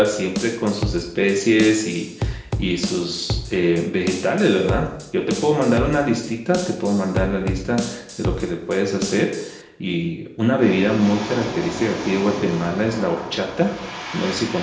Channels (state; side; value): identical; both; correlation 1.00